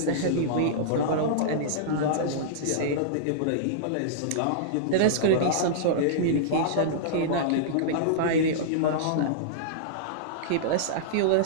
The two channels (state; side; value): different; both; correlation -0.02